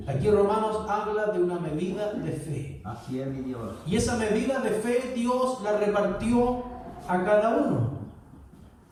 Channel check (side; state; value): both; identical; correlation 1.00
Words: Aquí Romanos habla de una medida de fe. Así es, mi Dios. Y esa medida de fe Dios la repartió a cada uno.